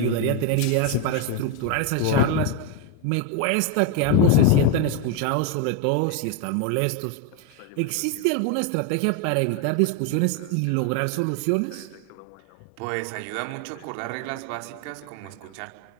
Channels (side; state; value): both; different; correlation 0.01